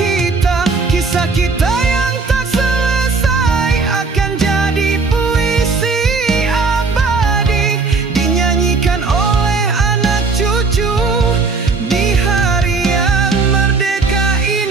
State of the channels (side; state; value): left; quieter; 4.3 dB